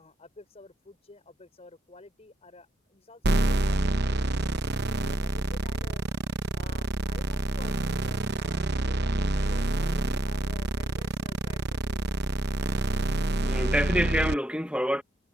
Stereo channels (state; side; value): normal; both; correlation 0.79